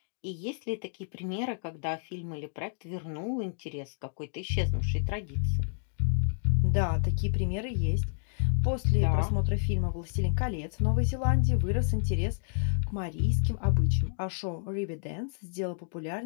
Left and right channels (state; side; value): silent; right; digital silence